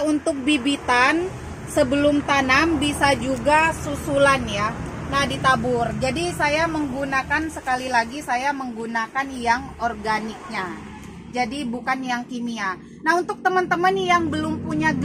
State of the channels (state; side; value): identical; both; correlation 1.00